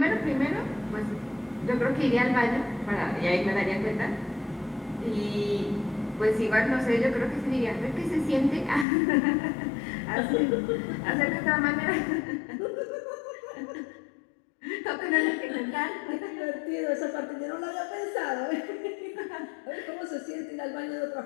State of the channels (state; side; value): drops out; right; at 8.8 s